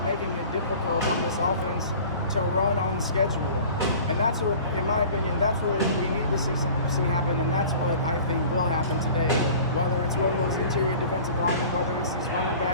making it difficult on this offense to run on schedule? And that's what, in my opinion, that's what we need to see happen, and that's what I think will happen today. Whether it's one of those interior defensive linemen, whether it's these running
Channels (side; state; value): both; inverted; correlation -0.44